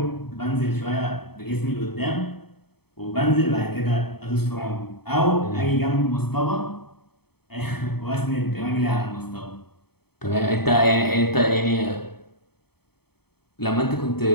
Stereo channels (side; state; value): right; late; 0.97 ms